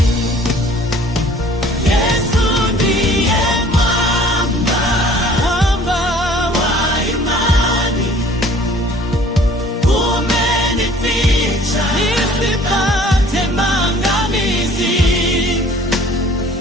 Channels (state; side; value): normal; both; correlation 0.53